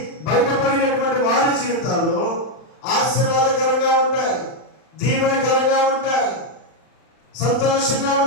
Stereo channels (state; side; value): late; right; 39 ms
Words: బయటపడినటువంటి వారి జీవితాలు ఆశీర్వాదకరంగా ఉంటాయి, దీవెనకరంగా ఉంటాయి, సంతోషంగా